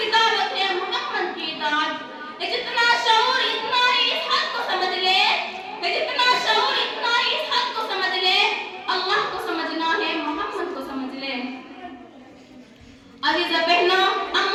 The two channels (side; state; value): both; identical; correlation 1.00